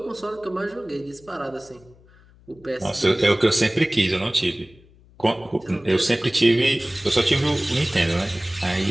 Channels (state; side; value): noise; left; hum, 27 dB below the sound